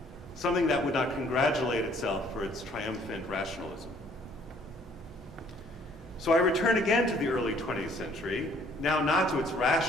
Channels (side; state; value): both; normal; correlation 0.60